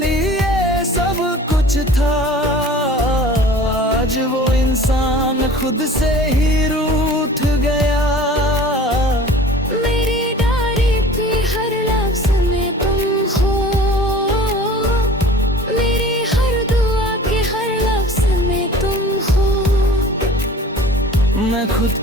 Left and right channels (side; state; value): both; normal; correlation 0.44